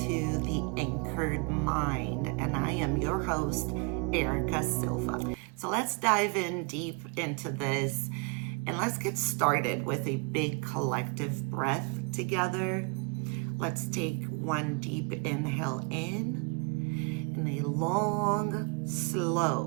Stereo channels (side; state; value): left; quieter; 32.6 dB